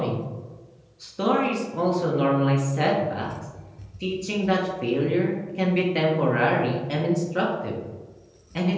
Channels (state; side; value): identical; both; correlation 1.00